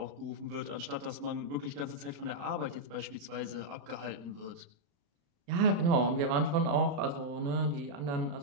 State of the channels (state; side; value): late; left; 35 ms